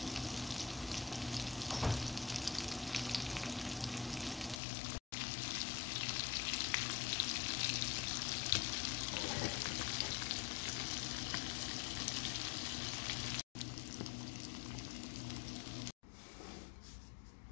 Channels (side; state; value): right; drops out; at 4.6 s